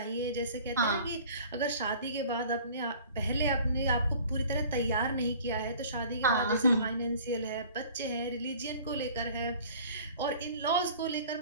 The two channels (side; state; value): both; inverted; correlation -0.48